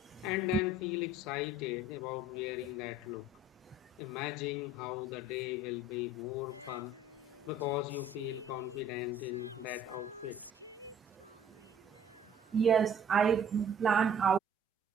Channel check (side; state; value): both; normal; correlation 0.53